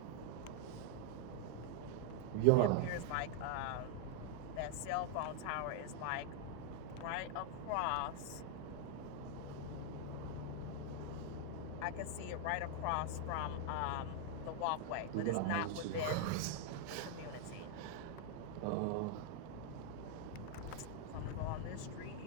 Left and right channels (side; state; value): both; different; correlation 0.00